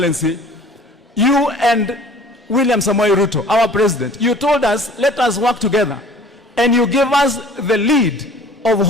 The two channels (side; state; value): both; normal; correlation 0.49